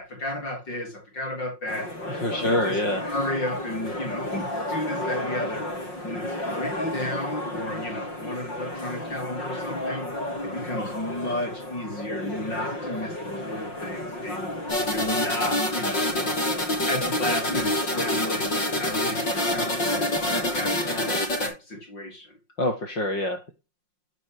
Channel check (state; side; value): late; right; 5.6 ms